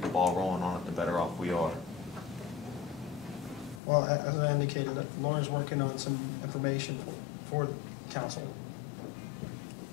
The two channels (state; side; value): drops out; right; at 3.8 s